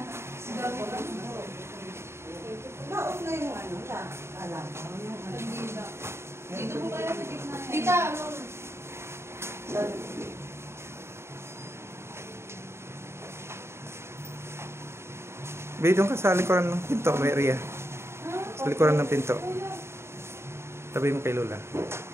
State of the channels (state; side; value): late; left; 0.13 ms